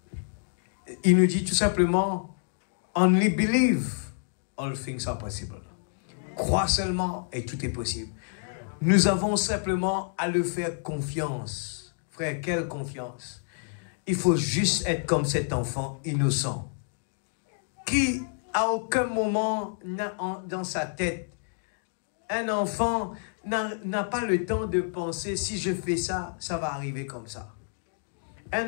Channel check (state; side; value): silent; right; digital silence